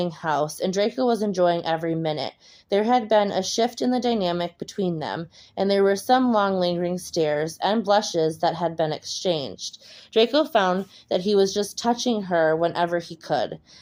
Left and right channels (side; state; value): both; identical; correlation 1.00